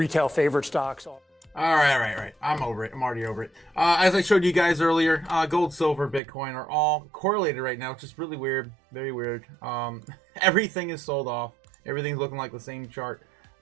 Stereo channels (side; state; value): left; drops out; at 6.2 s